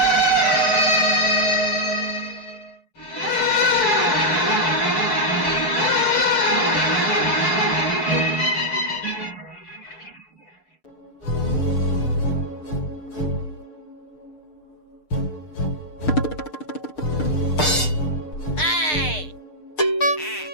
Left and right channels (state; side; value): late; right; 6.6 ms